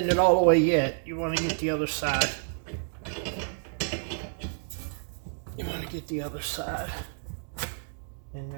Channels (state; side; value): silent; left; digital silence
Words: it all the way yet. You want to get the other side. You want to get the other side in